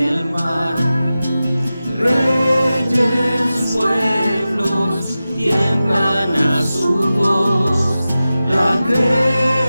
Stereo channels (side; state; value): both; inverted; correlation -0.94